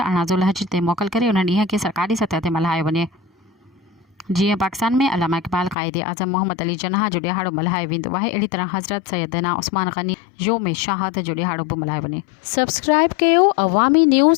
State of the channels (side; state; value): right; drops out; at 5.8 s